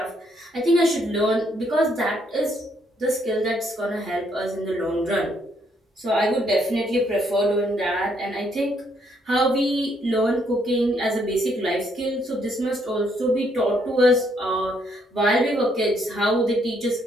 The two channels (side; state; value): both; normal; correlation 0.71